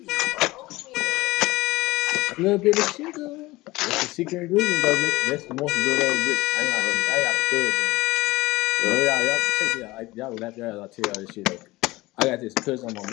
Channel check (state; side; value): quieter; right; 20.0 dB